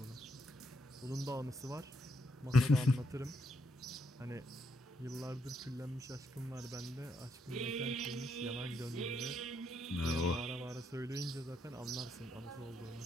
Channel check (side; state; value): both; normal; correlation 0.77